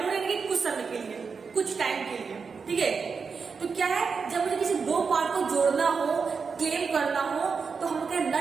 यानी कि कुछ समय के लिए, कुछ टाइम के लिए, ठीक है। तो क्या है, जब मुझे किसी दो पार्ट को जोड़ना हो, क्लेम करना हो, तो हम क्या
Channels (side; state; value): left; quieter; 5.3 dB